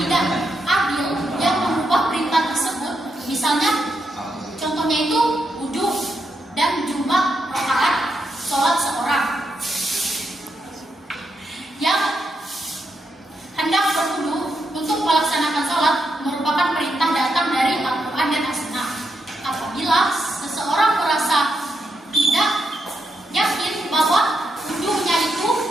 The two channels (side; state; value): both; normal; correlation 0.83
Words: adil yang mengubah perintah tersebut. Misalnya, contohnya itu wudhu dan jumlah rakaat sholat seorang. Yang hendak berwudhu untuk melaksanakan sholat merupakan perintah datang dari Al-Quran dan As-Sunnah. Apabila seseorang merasa tidak yakin bahwa wudhunya itu